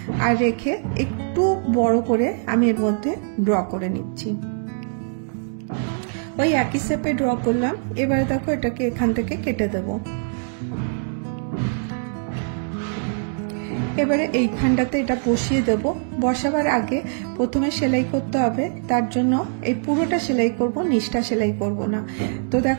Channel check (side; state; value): left; silent; digital silence